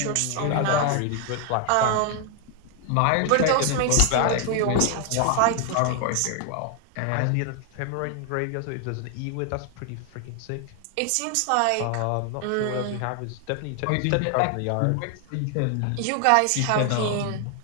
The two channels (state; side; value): different; both; correlation 0.00